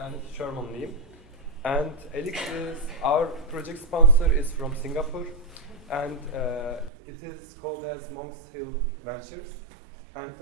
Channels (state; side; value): drops out; left; at 6.9 s